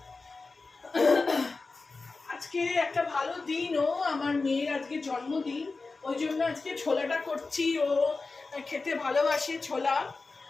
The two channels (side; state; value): right; quieter; 3.9 dB